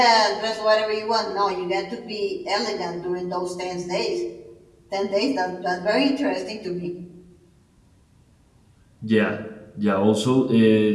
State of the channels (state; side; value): identical; both; correlation 1.00